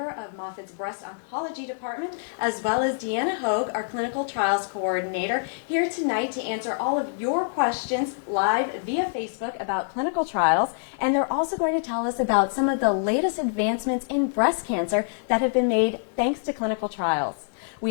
of Moffitt's Breast Oncology Department, as well as Deanna Hogue, our clinical trials coordinator, here tonight to answer all of your questions live via Facebook about clinical trials. And they're also going to tell us about some of the latest advancements in breast cancer that have been made thanks to clinical trials.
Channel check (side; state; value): right; silent; digital silence